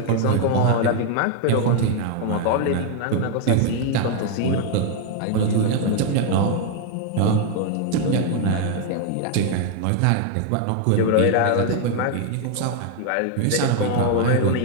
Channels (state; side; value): different; both; correlation 0.00